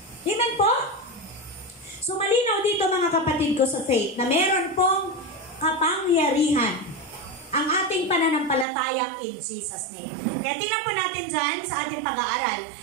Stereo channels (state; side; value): drops out; left; at 8.7 s